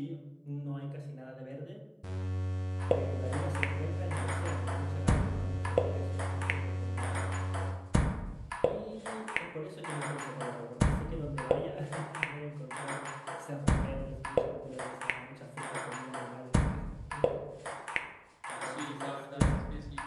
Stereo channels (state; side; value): identical; both; correlation 1.00